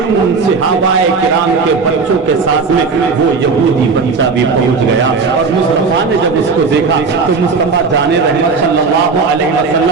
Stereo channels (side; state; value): left; quieter; 4.7 dB